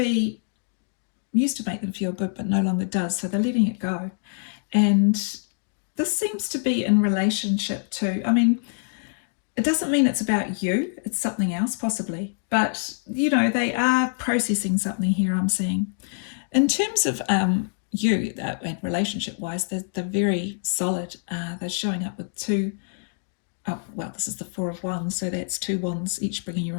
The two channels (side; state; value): right; silent; digital silence